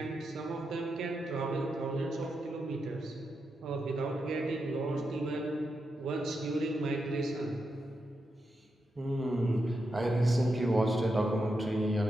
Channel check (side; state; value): both; normal; correlation 0.86